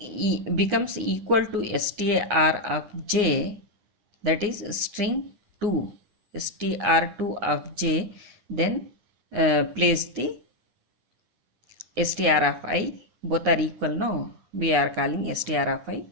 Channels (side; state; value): left; late; 9.9 ms